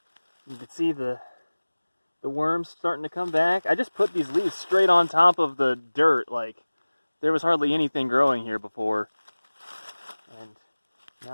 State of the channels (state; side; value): inverted; both; correlation -1.00